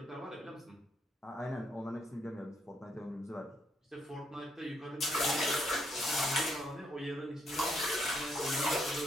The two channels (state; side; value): normal; both; correlation 0.74